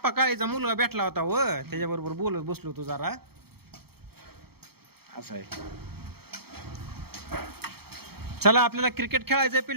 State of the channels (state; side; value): late; left; 0.96 ms